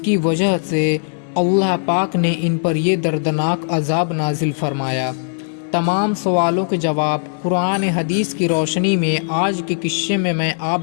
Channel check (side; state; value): right; silent; 67 dB below the other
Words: کی وجہ سے اللہ پاک نے ان پر یہ دردناک عذاب نازل فرمایا؟ تمام سوالوں کے جواب قرآن حدیث کی روشنی میں آج کے قصے میں